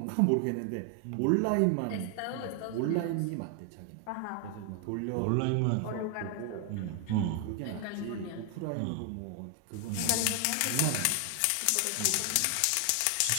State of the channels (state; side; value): different; both; correlation 0.00